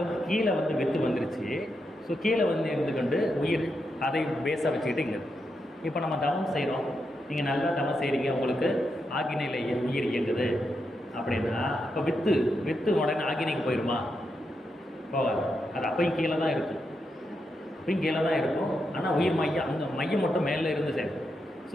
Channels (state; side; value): normal; both; correlation 0.84